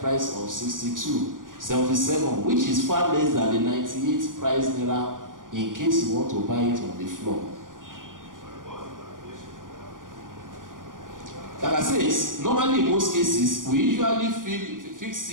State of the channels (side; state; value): left; late; 0.89 ms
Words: of 77, which is far less than the 98 price naira in case you want to buy it on the floor. Like I said, normally in most cases, we usually fix